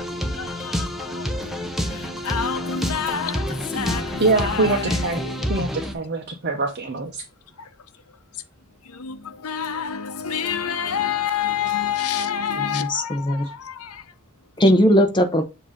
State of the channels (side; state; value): both; normal; correlation 0.35